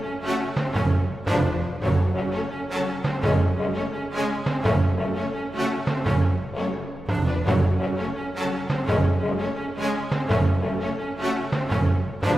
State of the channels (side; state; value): left; noise; hum, 21 dB below the sound